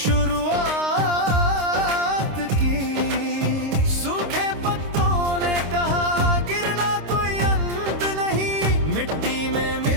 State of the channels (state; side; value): late; left; 26 ms